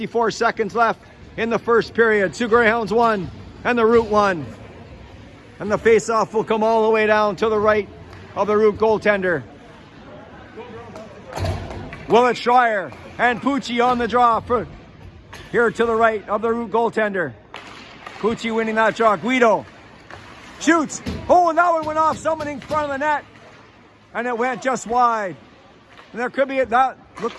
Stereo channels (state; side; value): identical; both; correlation 1.00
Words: seconds left in the first period. Sioux Greyhounds 1 and the root 1. And the face-off will come all the way down to the right of the root goaltender. Willett Schreier and Pucci on the draw for here to the right of the root goaltender. Pucci winning that draw. Guido shoots. Oh, and that one went off someone in front of the net. And it went just wide. And there could be, that